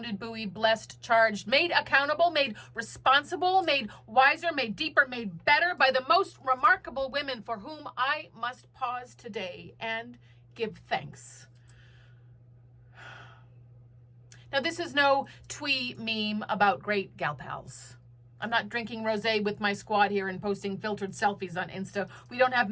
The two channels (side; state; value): both; identical; correlation 1.00